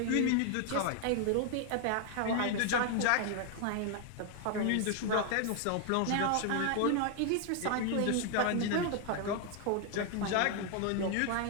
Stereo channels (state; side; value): different; both; correlation 0.00